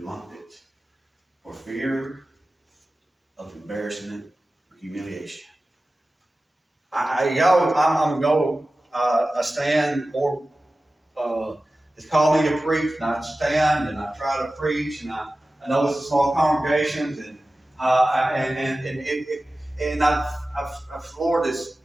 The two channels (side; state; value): both; normal; correlation 0.96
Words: for fear of embarrassment or humiliation. I stand more. It's called me to preach, and I stand and I try to preach, and I know it's a small congregations, and the Lord has